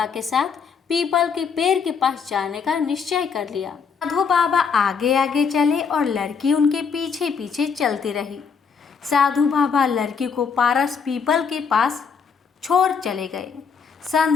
के साथ पीपल के पेड़ के पास जाने का निश्चय कर लिया। साधु बाबा आगे आगे चले और लड़की उनके पीछे पीछे चलती रही। साधु बाबा लड़की को पारस पीपल के पास छोड़ चले गए।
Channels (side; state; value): right; quieter; 6.1 dB